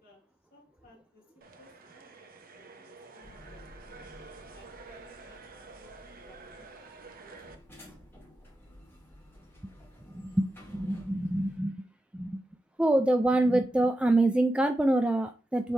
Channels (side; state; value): both; normal; correlation 0.90